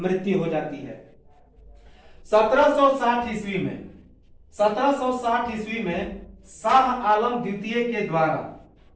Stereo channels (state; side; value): identical; both; correlation 1.00